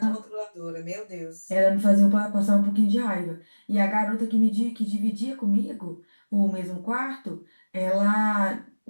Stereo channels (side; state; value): both; inverted; correlation -1.00